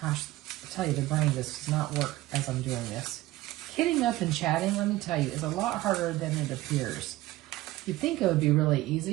Gosh, I tell you, the brain just does not work as I'm doing this. Kidding up and chatting, let me tell you, is a lot harder than it appears. You'd think it would be really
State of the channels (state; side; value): quieter; left; 17.3 dB